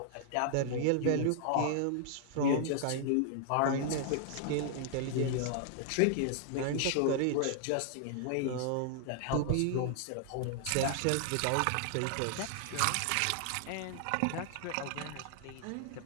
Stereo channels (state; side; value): different; both; correlation 0.00